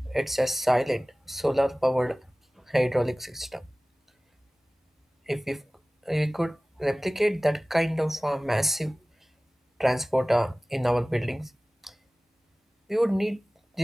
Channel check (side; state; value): both; normal; correlation 0.98